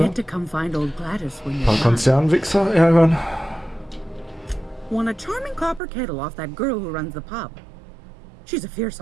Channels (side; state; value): left; drops out; at 5.8 s